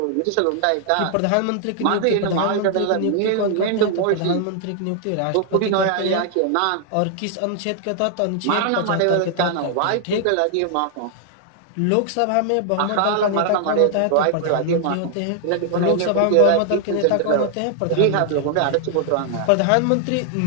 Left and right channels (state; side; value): different; both; correlation 0.00